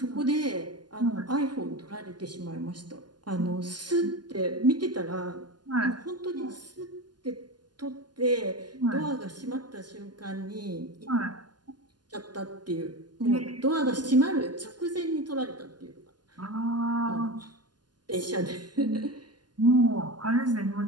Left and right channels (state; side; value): late; left; 0.71 ms